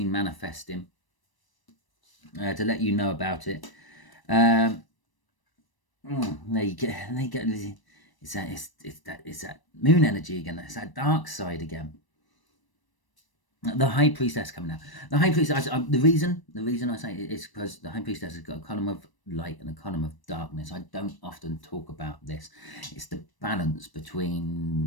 manifesting, to let you know about it. There you go. It's that moon energy again. It's that dark side again. The High Priestess coming out. The High Priestess. The reason I say it is because the High Priestess has got a column of light and a column of darkness. I don't often talk about this. It's the balance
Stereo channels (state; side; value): late; right; 1.0 ms